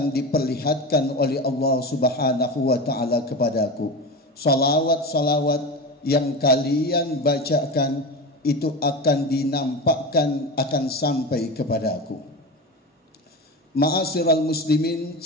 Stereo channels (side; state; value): both; normal; correlation 0.25